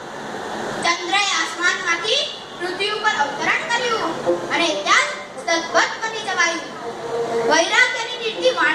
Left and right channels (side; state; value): both; identical; correlation 1.00